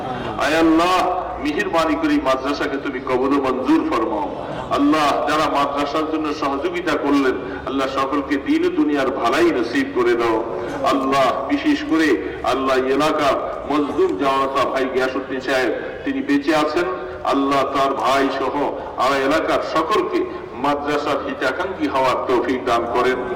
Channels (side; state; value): both; identical; correlation 1.00